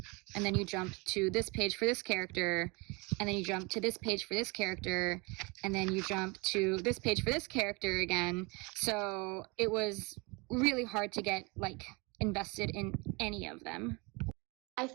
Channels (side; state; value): left; quieter; 28.0 dB